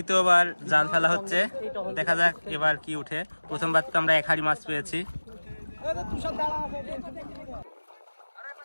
জাল ফেলা হচ্ছে, দেখা যাক এবার কি উঠে। প্রথমবার তো আমরা 1 হাঁড়ি মাছ পেয়েছি।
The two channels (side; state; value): both; inverted; correlation -1.00